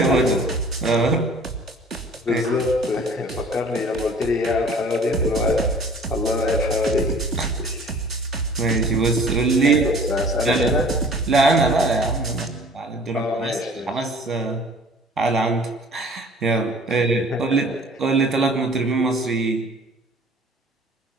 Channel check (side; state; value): both; normal; correlation 0.49